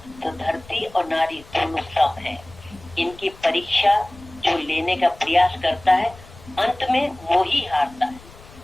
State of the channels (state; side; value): noise; left; rumble, 21 dB below the sound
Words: तो धरती और नारी दोनों सम है। इनकी परीक्षा जो लेने का प्रयास करता है अंत में वो ही हारता है।